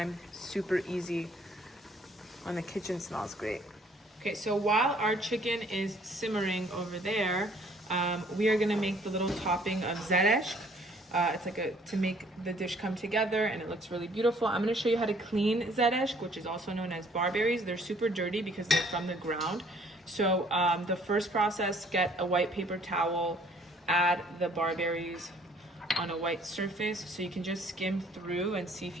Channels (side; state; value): both; normal; correlation 0.60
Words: super easy. And the kitchen smells great. Okay, so while our chicken is simmering over there, we are gonna make the little topping of Zerešk. It's like to make the dish come together, and it looks really beautiful. I'm gonna show you how to clean Zerešk, which is also known as barberries. They're super dirty because they're from the ground. So the first process, get a white paper towel, add the barberries on a white surface, so you can just skim through and see if